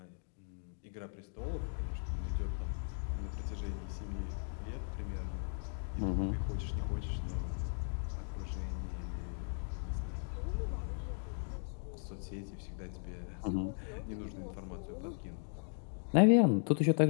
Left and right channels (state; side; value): silent; right; 53 dB below the other